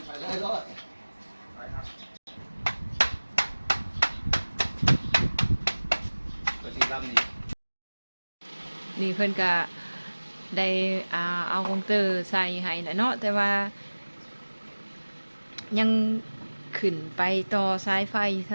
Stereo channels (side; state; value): both; inverted; correlation -1.00